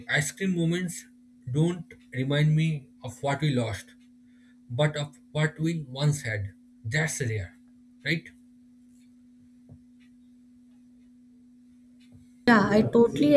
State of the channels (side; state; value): both; identical; correlation 1.00